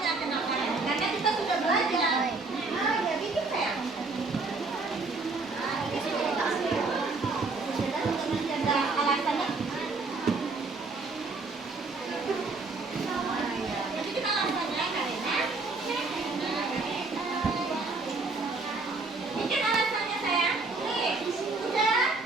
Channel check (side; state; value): left; quieter; 3.7 dB